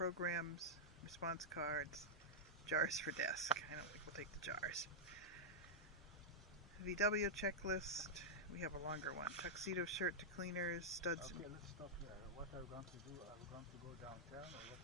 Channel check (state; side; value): normal; both; correlation -0.07